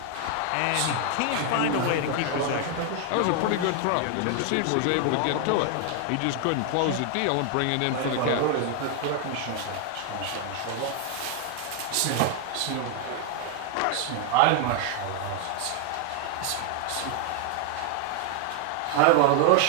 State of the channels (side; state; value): both; different; correlation 0.00